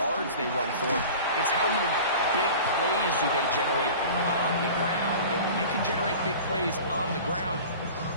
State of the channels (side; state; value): both; inverted; correlation -0.39